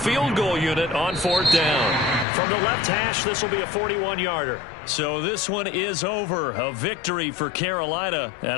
goal unit on 4th down. From the left hash, this will be a 41-yarder. So this one is over. A victory for Carolina.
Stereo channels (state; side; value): drops out; right; at 2.2 s